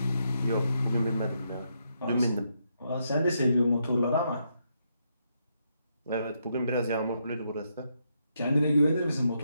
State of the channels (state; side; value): inverted; both; correlation -0.79